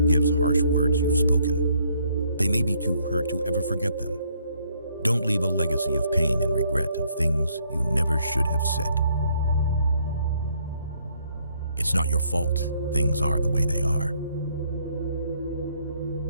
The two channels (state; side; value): inverted; both; correlation -0.68